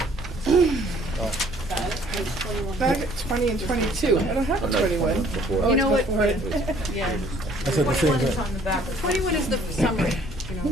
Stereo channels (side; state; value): both; normal; correlation 0.59